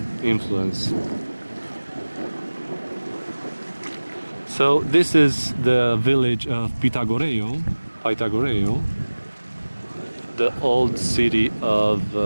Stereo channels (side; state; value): both; inverted; correlation -1.00